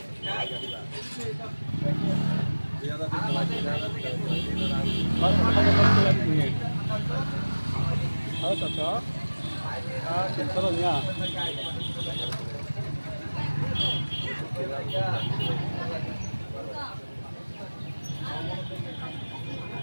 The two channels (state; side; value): inverted; both; correlation -1.00